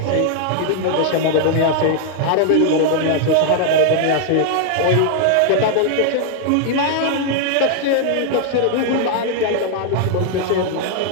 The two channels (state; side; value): different; both; correlation 0.00